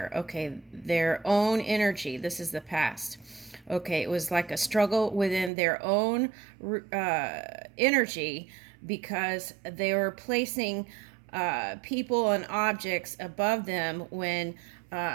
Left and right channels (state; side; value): drops out; left; at 5.5 s